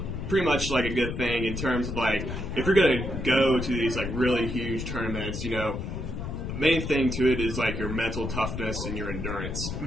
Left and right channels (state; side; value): noise; left; rumble, 5 dB below the sound